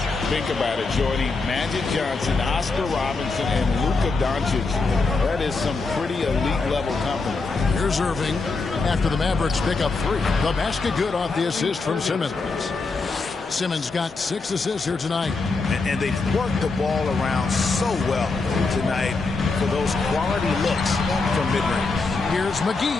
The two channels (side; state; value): right; quieter; 3.9 dB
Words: Think about it, Jordy. Magic Johnson, Oscar Robinson, and Luka Doncic. That is some pretty elite level company. Here's Irving after the Mavericks pick up 3. The basket good off the assist from Simmons. Simmons got 6 assists here tonight. And they've worked the ball around so well tonight for those quality looks from mid-range. Here's